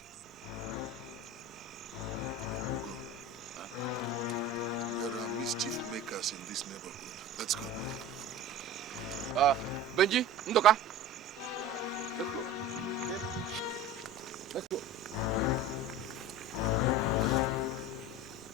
Ugo. There are mischief makers in this neighborhood. Let's go. Benji, Ndoka. Let's go. Okay. Let's go.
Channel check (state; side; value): normal; both; correlation 0.35